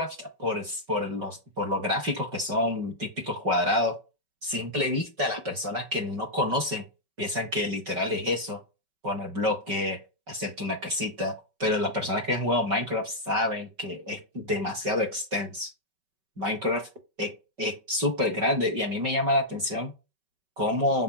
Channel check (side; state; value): left; late; 5.3 ms